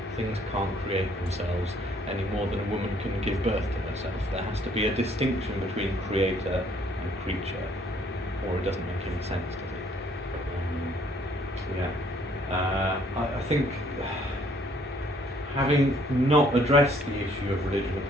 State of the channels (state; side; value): normal; both; correlation 0.63